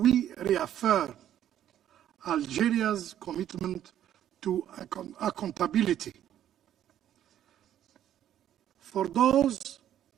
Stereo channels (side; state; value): left; quieter; 11.0 dB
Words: reaffirm Algeria's commitment to accountability. For those